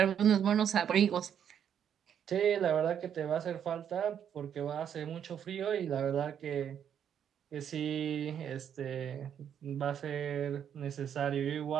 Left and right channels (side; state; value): left; quieter; 8.8 dB